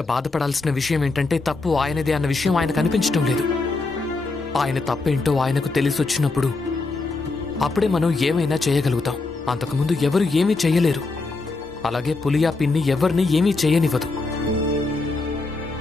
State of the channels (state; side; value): quieter; right; 3.6 dB